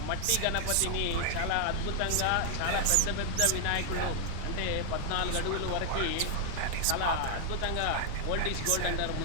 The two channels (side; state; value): both; different; correlation 0.00